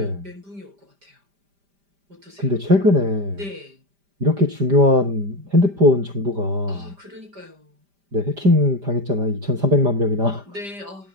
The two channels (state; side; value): late; left; 5.0 ms